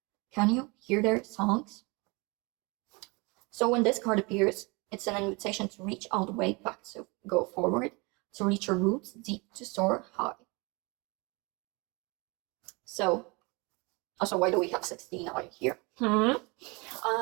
Can you hear their songs? So when this card appears, it's an invitation to reach all the way back, to go forward, to reach your roots deep, to soar high. So, also, why do we have 16 out here? No,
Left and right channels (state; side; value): quieter; left; 27.9 dB